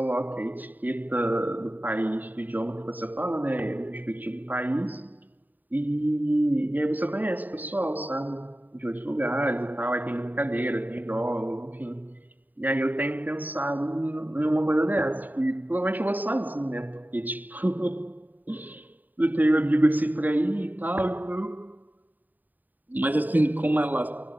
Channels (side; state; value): left; late; 0.087 ms